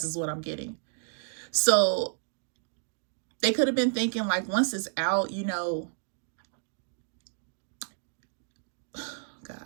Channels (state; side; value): silent; left; digital silence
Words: is what I'm getting. So they could have been thinking, like, once it's out, you know,